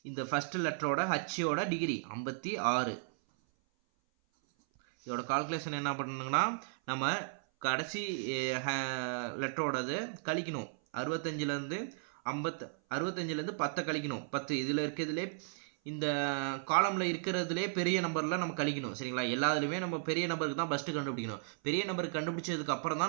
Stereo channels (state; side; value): silent; left; 54 dB below the other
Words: இந்த ஃபஸ்ட்டு லெட்டரோட ஹச்சோட டிகிரி 56. இதோட கால்குலேஷன் என்ன பண்ணணுங்கன்னா நம்ம கடைசி லெட்டரோடது கழிக்கணும். 65லேருந்து 10 கழிக்கணும். 10 இதில் இருக்கிறதுலே இந்த காலமில் இருக்கிறதுலே பெரிய நம்பரில் நம்ம கழிக்கணும். சரிங்களா? எல்லாத்துலேயுமே நம்ம பெரிய நம்பருக்கு தான் ஃபஸ்ட்டு கண்டுபிடிக்கணும். பெரிய நம்பருக்கு கண்டுபிடிச்சதுக்கு அப்புறம் தான்